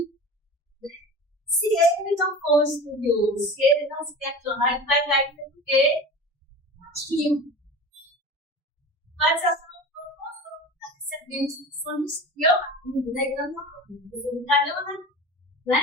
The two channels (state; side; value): normal; both; correlation 0.34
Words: Se ele não for estudioso, se ele não se questionar, ele vai cair no quê? Aquilo. Mas essa não está recebendo instruções que eu aprendi, né? Eu não aprendi, eu não aprendi,